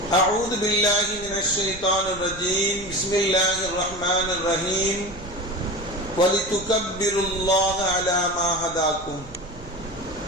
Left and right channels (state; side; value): noise; right; rumble, 15 dB below the sound